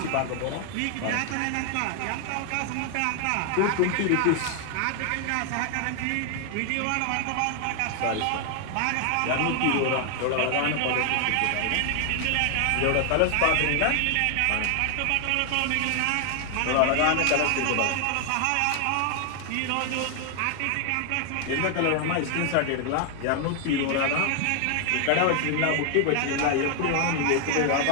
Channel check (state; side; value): different; both; correlation 0.00